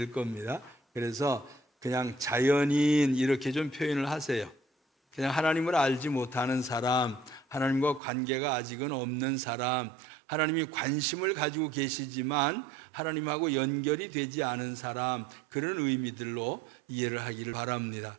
겁니다. 그래서 그냥 자연인 이렇게 좀 표현을 하세요. 그냥 하나님을 알지 못하는 사람, 하나님과 관계가 아직은 없는 사람, 하나님이 관심을 가지고 계시지만 하나님하고 연결이 되지 않은 사람, 그런 의미들로 이해를 하기를 바랍니다.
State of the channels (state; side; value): drops out; left; at 8.0 s